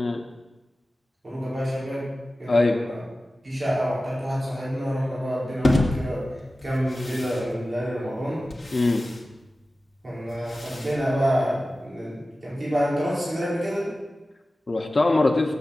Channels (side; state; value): both; normal; correlation 0.95